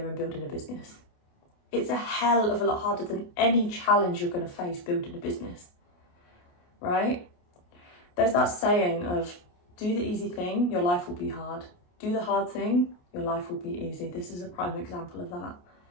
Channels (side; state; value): right; late; 28 ms